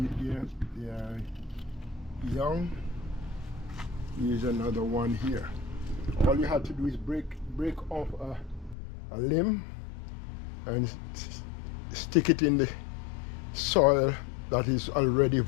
there. They are young. Here's another one here. All you have to do is break off a limb and stick it in the soil that is already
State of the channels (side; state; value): right; drops out; at 8.8 s